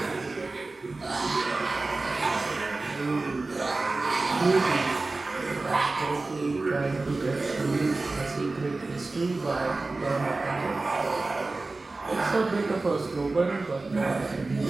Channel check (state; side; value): quieter; left; 3.4 dB